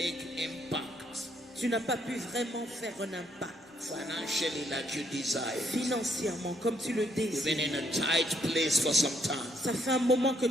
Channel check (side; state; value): both; normal; correlation 0.72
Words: impact Tu n'as pas pu vraiment faire un impact financially like you desire. financièrement comme tu le You've been désires. in a tight place for some time. Ça fait un moment que